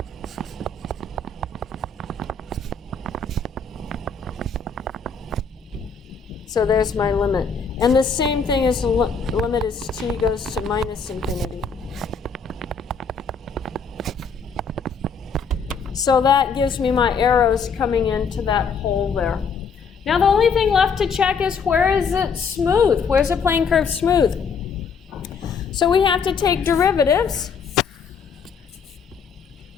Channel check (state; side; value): quieter; right; 5.4 dB